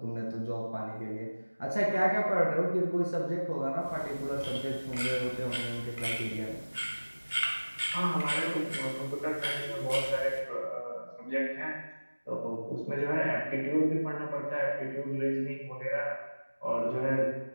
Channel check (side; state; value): both; inverted; correlation -1.00